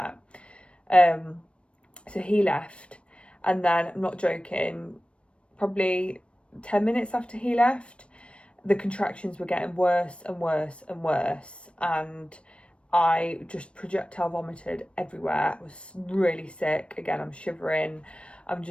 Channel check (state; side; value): late; right; 0.059 ms